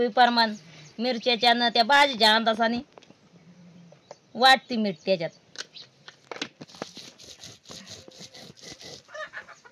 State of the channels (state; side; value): identical; both; correlation 1.00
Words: प्रमाण मिरच्याच्या न त्या भाजीच्या अंदाजाने वाटते मीठ त्याच्यात.